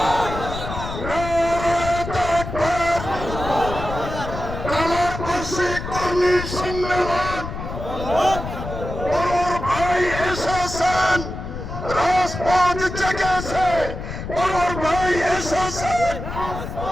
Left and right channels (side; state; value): left; noise; rumble, 7 dB below the sound